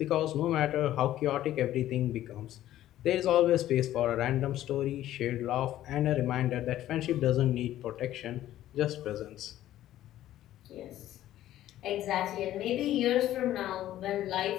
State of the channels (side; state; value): right; quieter; 13.3 dB